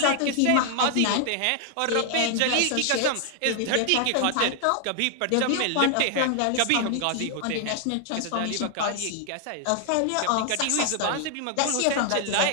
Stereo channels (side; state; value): both; different; correlation 0.00